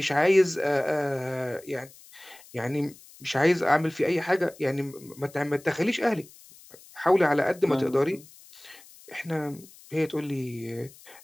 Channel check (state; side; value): noise; left; hiss, 22 dB below the sound